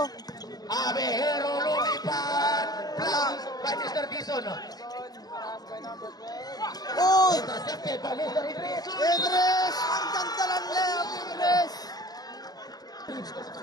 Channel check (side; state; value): right; late; 0.19 ms